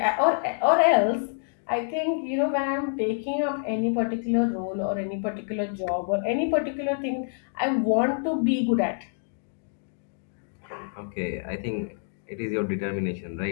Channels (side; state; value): right; silent; digital silence